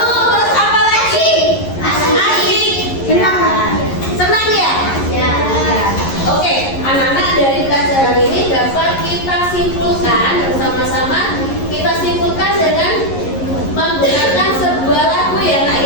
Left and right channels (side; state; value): right; late; 11 ms